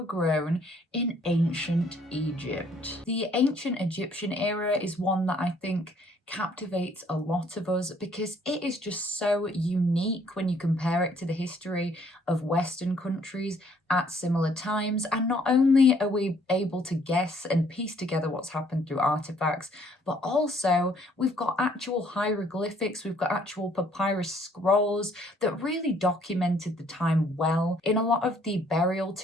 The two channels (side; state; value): both; normal; correlation 0.63